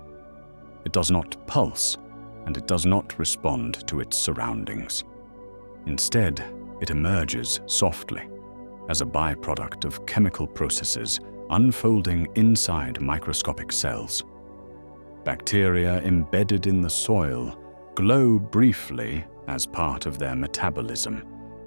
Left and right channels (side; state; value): both; inverted; correlation -1.00